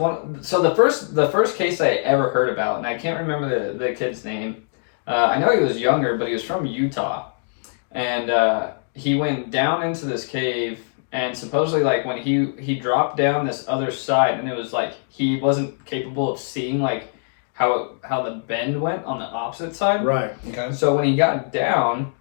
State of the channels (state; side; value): silent; right; digital silence